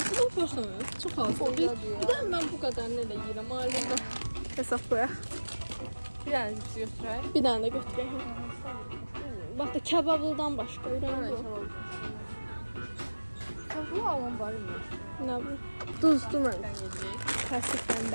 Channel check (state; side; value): inverted; both; correlation -1.00